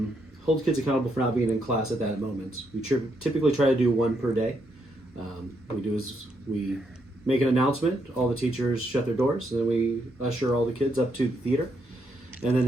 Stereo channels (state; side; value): normal; both; correlation 0.77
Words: hold kids accountable for not being in class at that moment. We typically try to do one per day. What we do is we make an announcement, all the teachers shut their doors, and then we usher all the kids up to the theater. And then